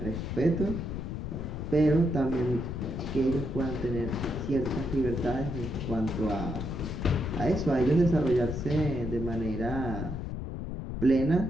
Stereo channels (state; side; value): noise; left; rumble, 5 dB below the sound